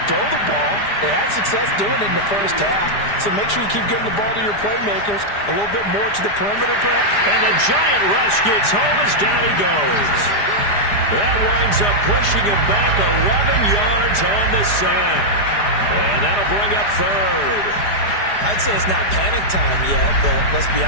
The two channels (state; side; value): late; right; 4.9 ms